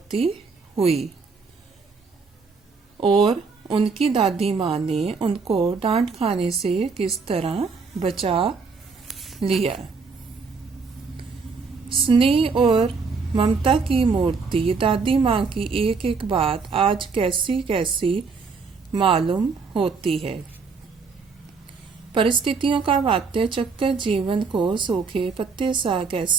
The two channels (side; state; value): left; quieter; 4.8 dB